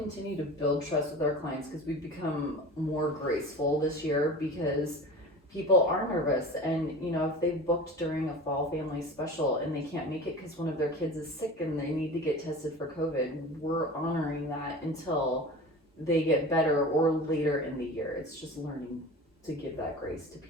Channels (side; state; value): both; normal; correlation 0.35